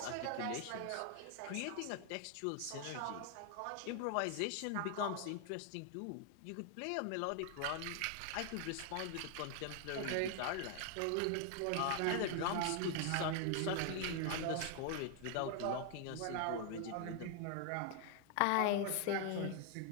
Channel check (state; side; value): different; both; correlation 0.00